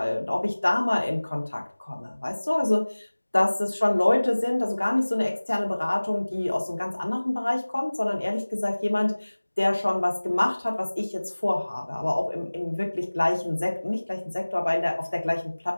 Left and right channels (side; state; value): both; inverted; correlation -1.00